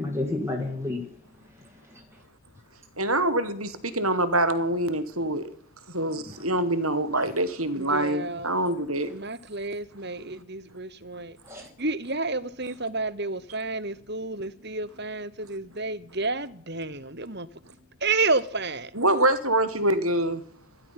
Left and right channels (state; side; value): normal; both; correlation -0.18